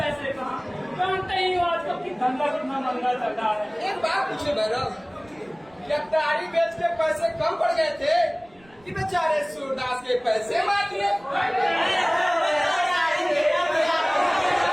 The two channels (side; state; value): right; noise; rumble, 30 dB below the sound